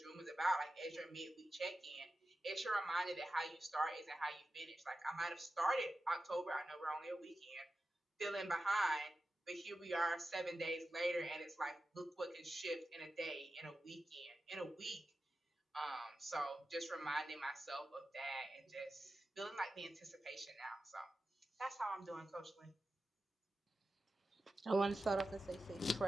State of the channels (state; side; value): normal; both; correlation 0.93